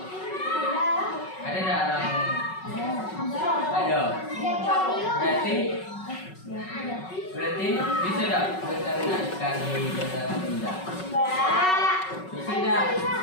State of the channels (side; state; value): right; late; 5.4 ms